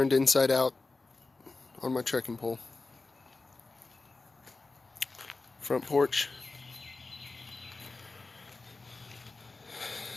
inside out on my trekking pole. Front porch.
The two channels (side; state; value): right; quieter; 3.6 dB